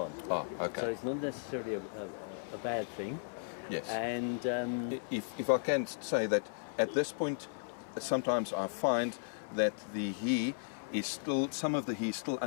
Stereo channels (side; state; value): right; silent; 54 dB below the other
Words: So it's not necessarily a bad thing. Yes. And if I can say that at this point, sometimes I find that the he is still, some of the he is still